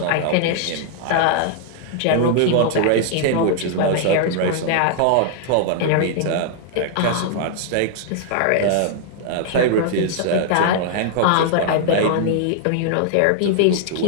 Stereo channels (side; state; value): both; different; correlation 0.00